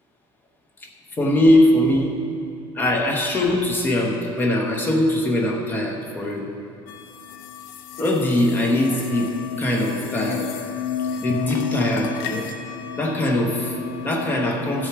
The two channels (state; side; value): normal; both; correlation 0.65